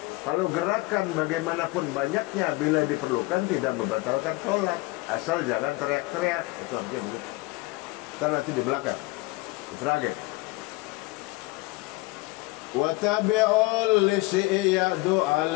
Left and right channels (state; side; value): quieter; right; 22.2 dB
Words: Kalau gerakan bagaimanapun banyaknya bila diperlukan tidak membatalkan sholat. Asal jangan teriak-teriak. Itu artinya begitu. Kita nanti di belakang Ifrage wa tabi'ul lisiyadu